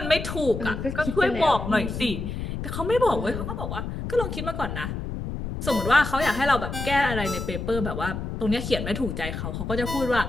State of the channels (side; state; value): left; noise; rumble, 5 dB below the sound